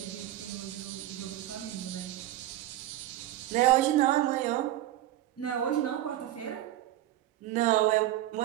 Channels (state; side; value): quieter; left; 14.1 dB